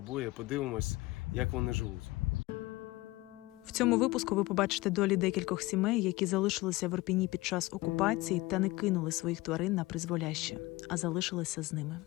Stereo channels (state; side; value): quieter; right; 20.3 dB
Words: подивимось, як вони живуть. В цьому випуску ви побачите долі декількох сімей, які залишилися в Ірпіні під час окупації та не кинули своїх тварин на призволяще, а залишилися з ними.